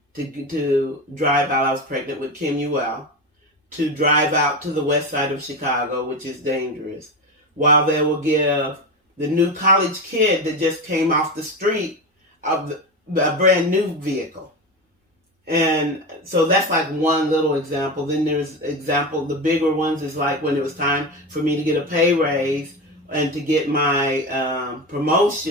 to drive out. I was pregnant with Kim Ewell, to drive out to the west side of Chicago, which is dangerous, while they will give the new college kid that just came off the street of a brand new vehicle. And so that's like one little example. Then there's the bigger ones is like when it was time for me to get a pay raise and to get my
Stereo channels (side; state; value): both; normal; correlation 0.21